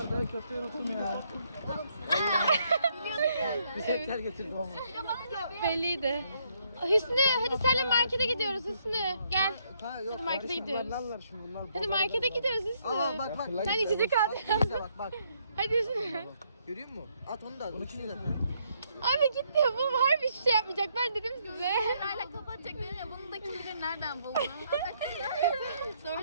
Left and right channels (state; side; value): inverted; both; correlation -0.72